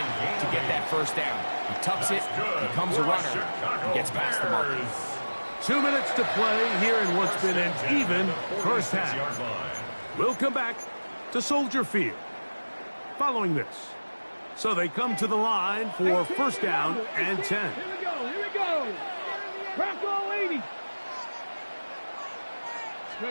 get that first down. He tucks it, becomes a runner, and gets past the mark. 2 minutes to play here in what's been an even first half. We'll come back to Soldier Field following this. So they come to the line for first down and 10. Here we go. Bronco 80.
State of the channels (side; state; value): both; inverted; correlation -1.00